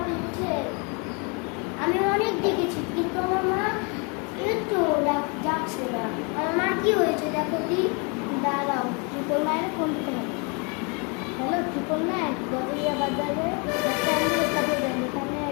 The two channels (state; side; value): quieter; right; 33.4 dB